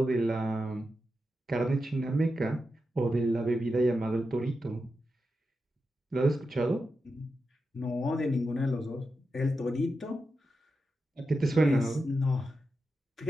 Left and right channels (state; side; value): normal; both; correlation 0.89